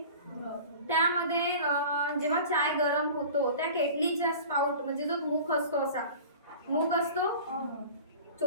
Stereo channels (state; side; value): inverted; both; correlation -0.39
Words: त्यामध्ये जेव्हा चाय गरम होतो त्या केटलीचा स्पाउट म्हणजे जो मुख असतो, असा मुख असतो,